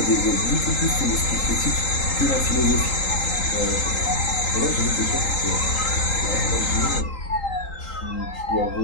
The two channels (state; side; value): late; right; 3.8 ms